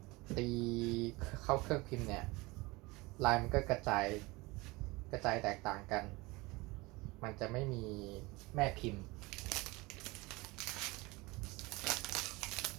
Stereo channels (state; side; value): quieter; left; 23.2 dB